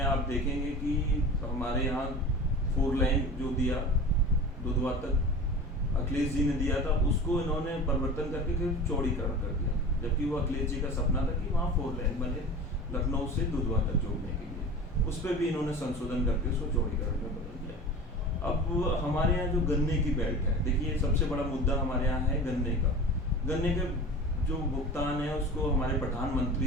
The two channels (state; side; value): normal; both; correlation 0.35